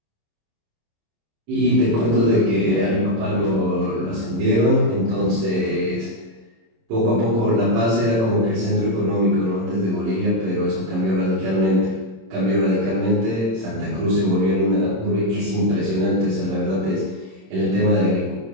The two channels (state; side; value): late; left; 26 ms